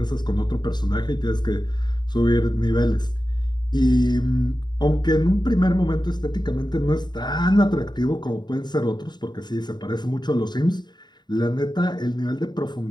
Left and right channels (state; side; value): late; right; 0.21 ms